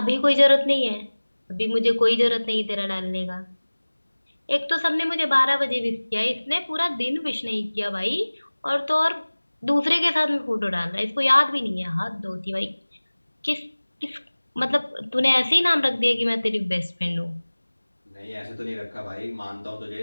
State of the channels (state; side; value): inverted; both; correlation -1.00